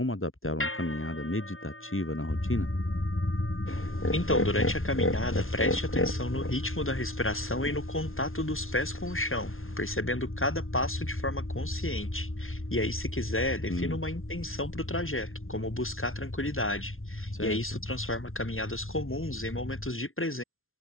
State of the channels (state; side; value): late; right; 0.61 ms